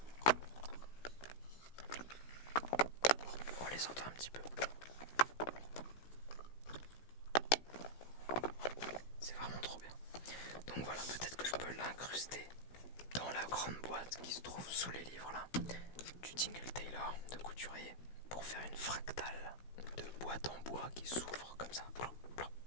boîte en bois qui s'ouvre comme ça. Plop, plop,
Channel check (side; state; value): right; late; 16 ms